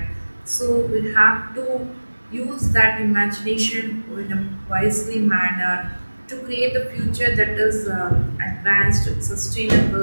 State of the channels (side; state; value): both; inverted; correlation -1.00